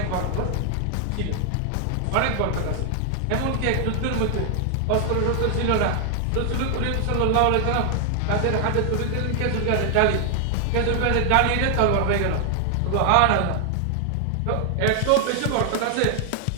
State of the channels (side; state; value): both; different; correlation 0.00